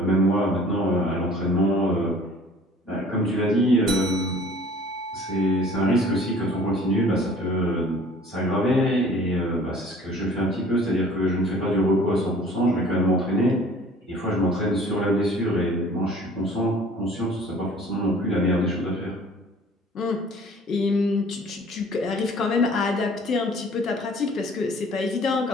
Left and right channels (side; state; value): both; normal; correlation 0.50